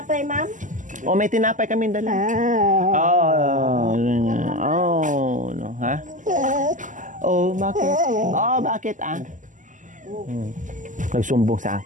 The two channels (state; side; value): late; left; 0.37 ms